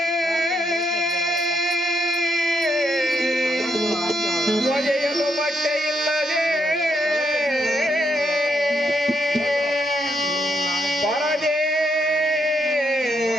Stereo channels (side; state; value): both; normal; correlation 0.78